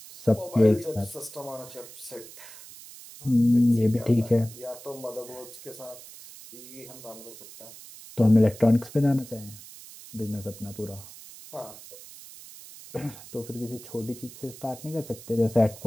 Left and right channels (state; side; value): noise; right; hiss, 17 dB below the sound